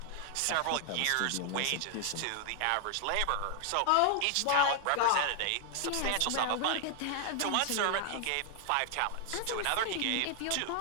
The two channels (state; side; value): different; both; correlation 0.00